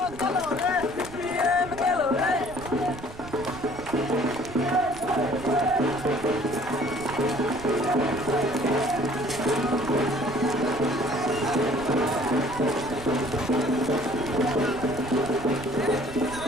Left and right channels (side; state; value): right; noise; rumble, 15 dB below the sound